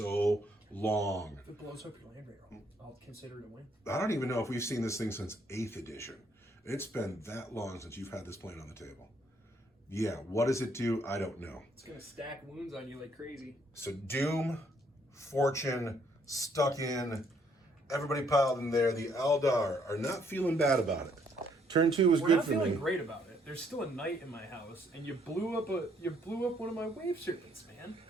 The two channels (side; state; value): both; normal; correlation 0.68